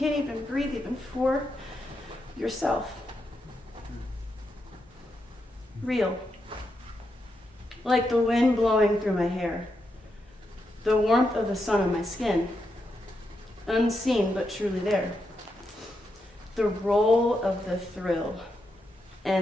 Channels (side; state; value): both; normal; correlation 0.84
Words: even breathe even for yourself. Real. Like the wind blowing through my hair. The warmth of the sun on my skin. Unseen but truly there. The roll of the thrill